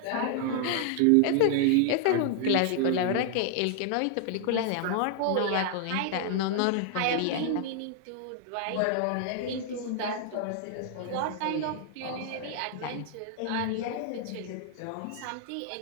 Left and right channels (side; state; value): both; different; correlation 0.00